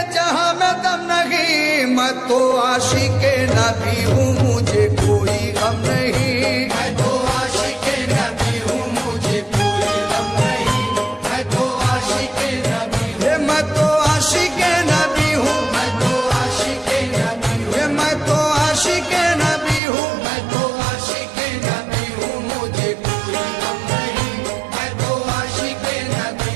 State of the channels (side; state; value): left; drops out; at 19.8 s